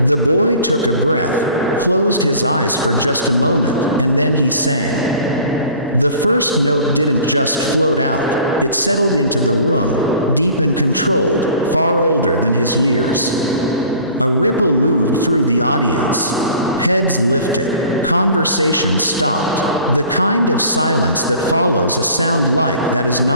The boy took a breath, closed his eyes for just a moment, and then he sang. The first note didn't just float out, it settled into the room, deep and controlled, far older than his years. A ripple moved through the audience. Heads lifted, conversations stopped, the kind of silence that follows a sound like that is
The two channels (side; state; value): both; inverted; correlation -0.47